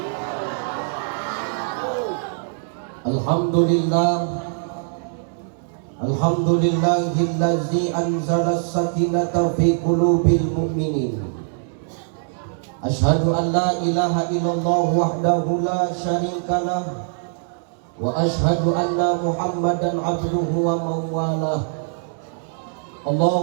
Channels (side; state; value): left; silent; 64 dB below the other